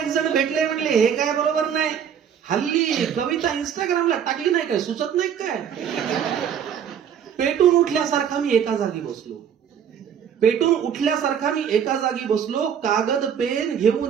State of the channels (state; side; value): quieter; left; 8.4 dB